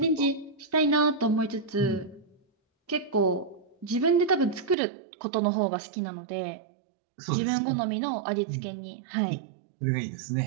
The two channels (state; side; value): drops out; left; at 4.8 s